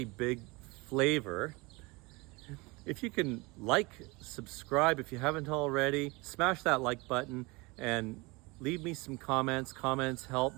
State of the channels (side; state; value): left; quieter; 25.1 dB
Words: big favor, if you can like, subscribe if you haven't already, smash that like button and leave me some comments. Comments help